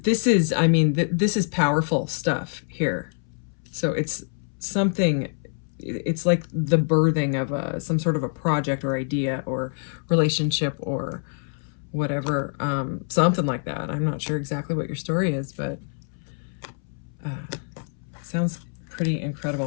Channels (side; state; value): right; silent; 61 dB below the other